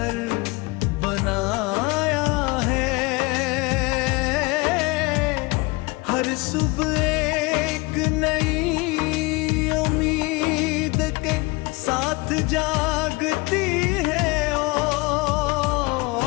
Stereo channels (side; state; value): right; quieter; 24.8 dB